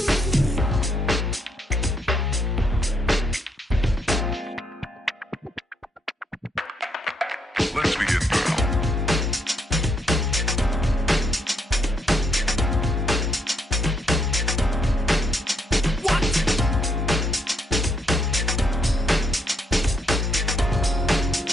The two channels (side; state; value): both; normal; correlation 0.75